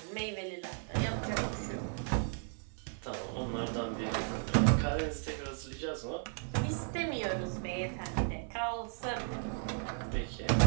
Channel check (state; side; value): silent; left; 54 dB below the other